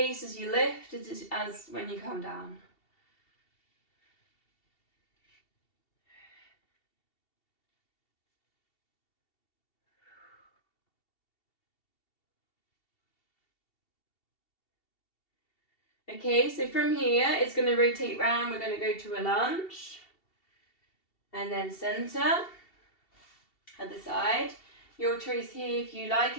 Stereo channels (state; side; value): late; right; 2.7 ms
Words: as you lift as when you come down. Okay, so from here, it's going to rotate round. We're going to go to a lunge. And then center. Other side. Your choice here, if you like